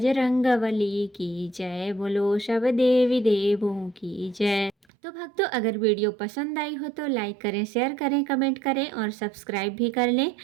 की जय, बोलो सब देवी देवों की जय। तो भक्तों, अगर वीडियो पसंद आई हो तो लाइक करें, शेयर करें, कमेंट करें और सब्सक्राइब भी कर लें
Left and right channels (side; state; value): left; drops out; at 4.7 s